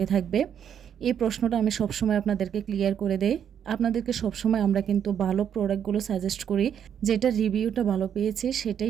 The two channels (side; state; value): left; quieter; 8.7 dB